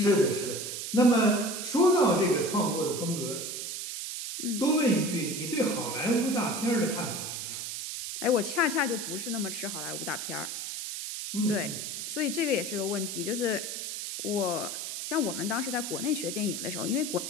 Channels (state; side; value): noise; right; hiss, 5 dB below the sound